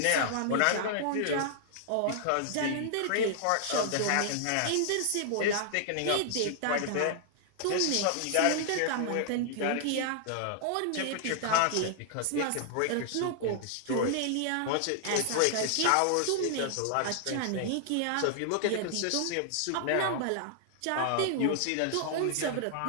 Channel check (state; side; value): different; both; correlation -0.01